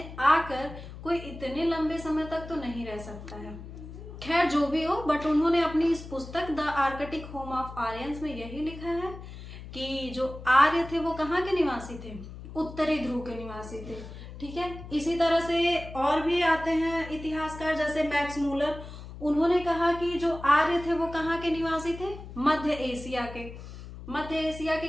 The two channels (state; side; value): noise; left; hum, 13 dB below the sound